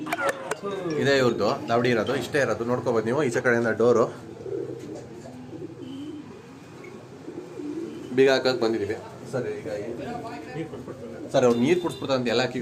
ಇದೇ ಇವ್ರದ್ದು ದಾವಡಿ ಇರೋದು, ಇಷ್ಟೇ ಇರೋದು, ನೋಡ್ಕೋಬೋದು ನೀವು. ಈಚೆ ಕಡೆಯಿಂದ ಡೋರು ಬೀಗ ಹಾಕಕ್ಕೆ ಬಂದಿದ್ದೀವಿ ಸರ್. ಈಗ ಸರ್ ಅವ್ರು ನೀರು ಕುಡಿಸ್ಬಿಡ್ತಾರೆ ಎಲ್ಲ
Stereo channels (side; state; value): both; identical; correlation 1.00